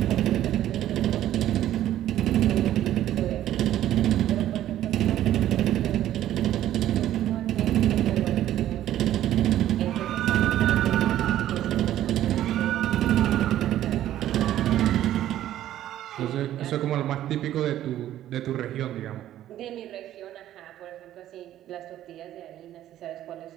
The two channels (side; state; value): left; quieter; 12.6 dB